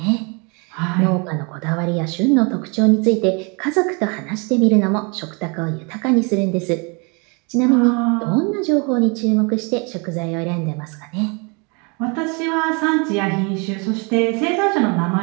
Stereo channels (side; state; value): left; quieter; 32.2 dB